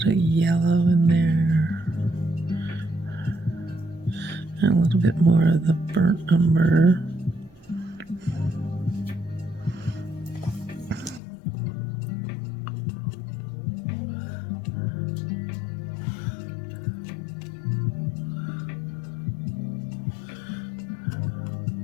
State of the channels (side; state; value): right; drops out; at 11.2 s